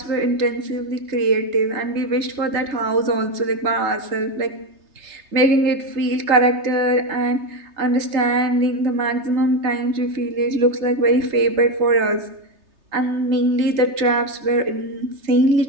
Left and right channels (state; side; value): late; left; 3.3 ms